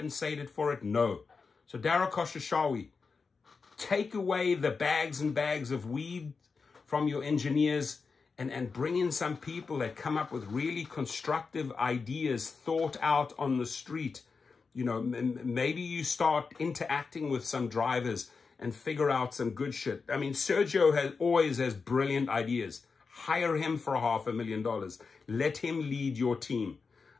for it? No. So Dara Khosrowshahi, take away the bags and bags of weed from your engineers and bring in some people that come up with really constructive ideas thought out on the street. You know, maybe you start interacting with some drivers and figure out some good shit. I mean, Sergio always has brilliant ideas. Hire him for $500,000. Let him lead your team.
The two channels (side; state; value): right; quieter; 4.8 dB